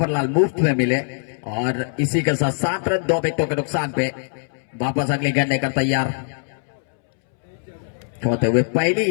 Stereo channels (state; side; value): silent; right; 64 dB below the other